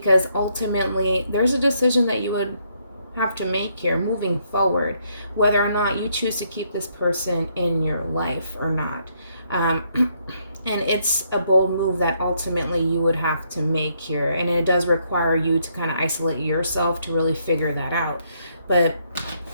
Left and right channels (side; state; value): both; inverted; correlation -0.73